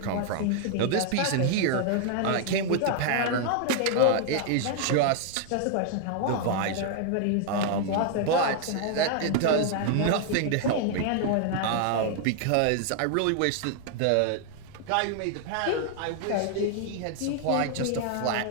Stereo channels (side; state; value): both; different; correlation 0.00